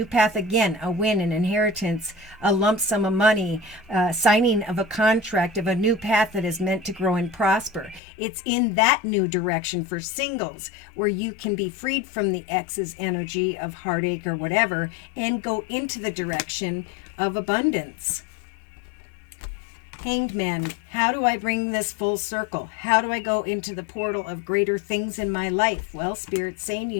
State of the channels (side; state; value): right; drops out; at 8.0 s